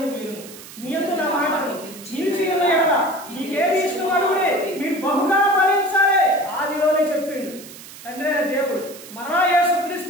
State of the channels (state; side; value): noise; right; hiss, 16 dB below the sound